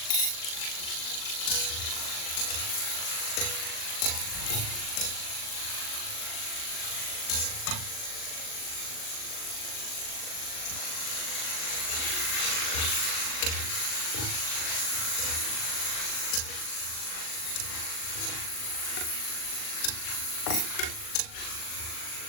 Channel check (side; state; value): right; late; 39 ms